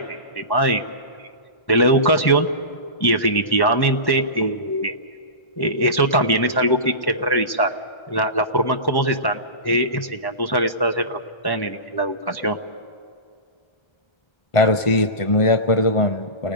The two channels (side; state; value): right; late; 1.1 ms